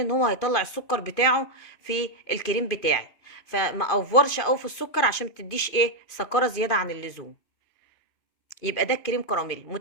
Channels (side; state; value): right; late; 2.5 ms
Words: ان هو هيطلع السكر بتاعه في الكريم بتاعي. فما افورش قوي في السكر عشان ما تديش ايه سكره زياده عن اللزوم. يبقى ده الكريم كراميل.